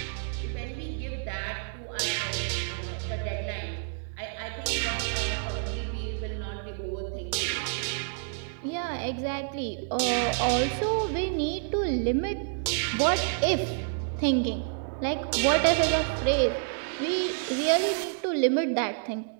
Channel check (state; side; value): silent; left; digital silence